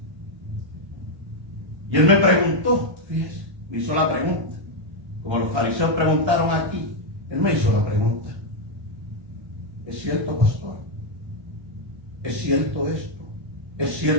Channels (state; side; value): late; left; 1.3 ms